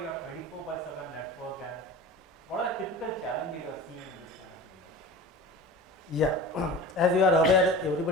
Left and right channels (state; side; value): normal; both; correlation 0.36